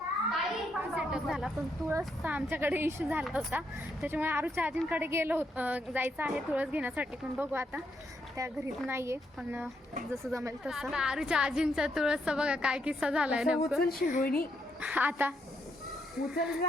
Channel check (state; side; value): normal; both; correlation 0.77